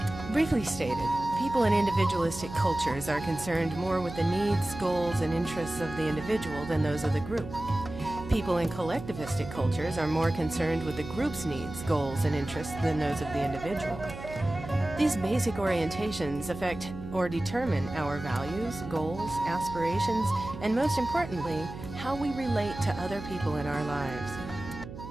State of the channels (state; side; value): noise; right; hum, 12 dB below the sound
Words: Briefly stated, people in individualistic cultures are concerned more with the needs, goals, and interests of the individual than those of the group. People in collectivistic cultures are more concerned with the group's needs, goals, and interests than those of the individual. These basic orientations affect or determine our values, goals, aspirations, and most importantly, how we relate to other people in our lives.